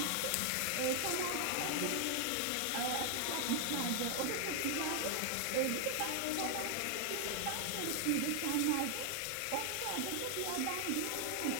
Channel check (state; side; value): different; both; correlation 0.00